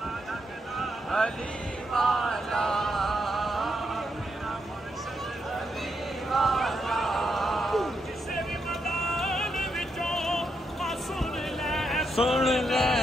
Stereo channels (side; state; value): both; normal; correlation 0.80